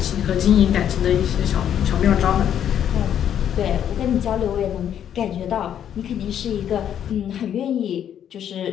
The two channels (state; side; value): quieter; right; 9.7 dB